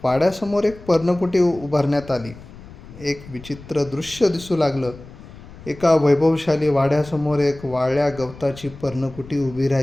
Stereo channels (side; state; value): left; noise; rumble, 18 dB below the sound